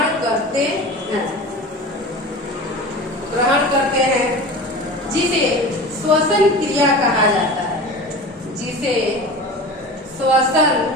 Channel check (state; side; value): normal; both; correlation 0.34